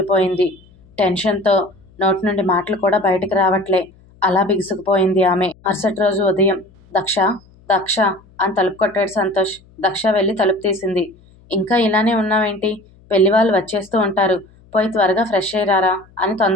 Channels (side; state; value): left; noise; hum, 28 dB below the sound